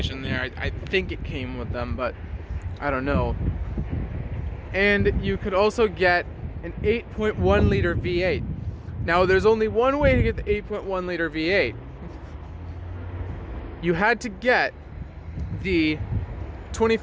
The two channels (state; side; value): identical; both; correlation 1.00